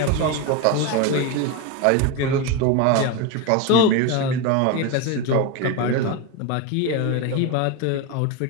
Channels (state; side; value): different; both; correlation 0.03